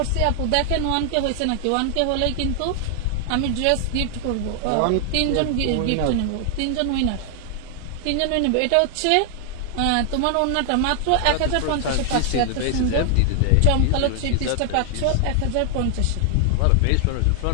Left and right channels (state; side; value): different; both; correlation 0.00